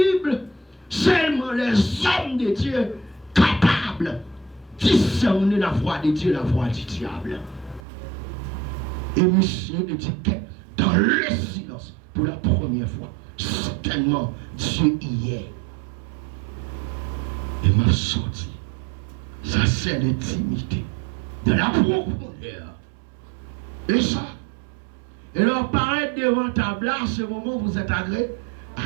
seulement les hommes de Dieu capables de discerner la voix de Dieu, la voix du diable. Et monsieur dit que dans le silence, pour la première fois, certainement Dieu y est. Et m'a sorti. Ça c'est l'intimité de la profondeur. Et ça, et leur paraître devant ta place, ce moment où vous êtes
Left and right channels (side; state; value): left; drops out; at 7.8 s